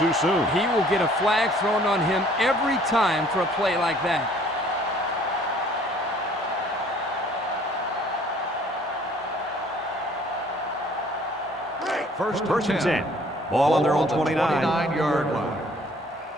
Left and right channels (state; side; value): normal; both; correlation 0.57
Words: soon. He will get a flag thrown on him every time for a play like that. First and 10. Ball on their own 29-yard line.